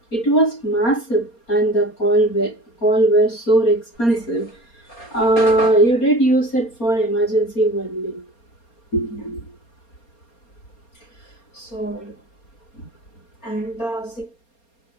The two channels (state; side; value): late; right; 4.3 ms